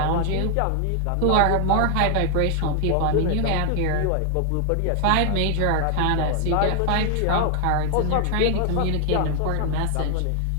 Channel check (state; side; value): different; both; correlation 0.00